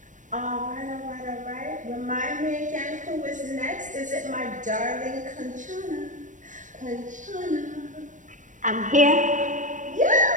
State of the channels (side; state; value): left; late; 0.37 ms